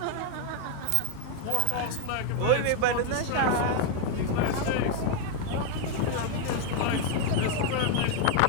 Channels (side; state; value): both; different; correlation 0.01